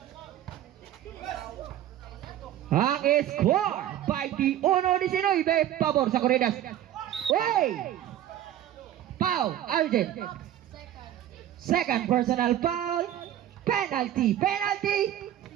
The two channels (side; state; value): left; quieter; 11.9 dB